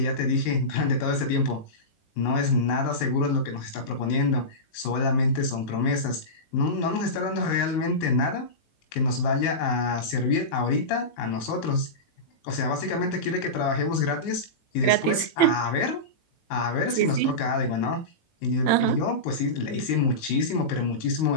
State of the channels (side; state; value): right; late; 19 ms